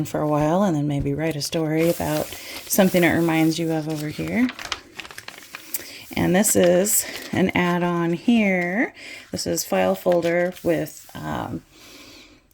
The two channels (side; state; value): both; identical; correlation 1.00